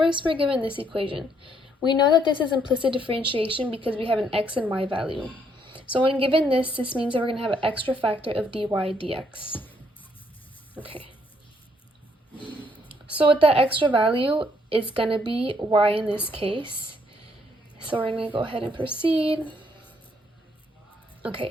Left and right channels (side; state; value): both; normal; correlation 0.70